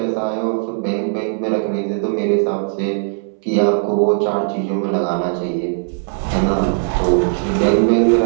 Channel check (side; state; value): left; silent; 65 dB below the other